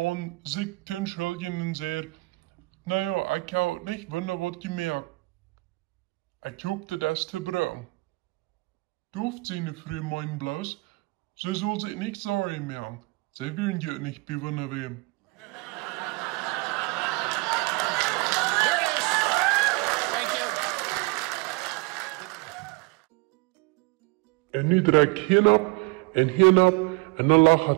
sich zu entschuldigen und sagt, naja, ich habe nicht wunder was gemerkt. Ich guckte das zu brauchen. Durft seine Frau meinen bloß, sie soll sich nicht sorry machen. Sie werden ja nicht bewundern wem. There it is. Thank you. Und nu direkt hinab, und dann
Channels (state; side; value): quieter; left; 25.7 dB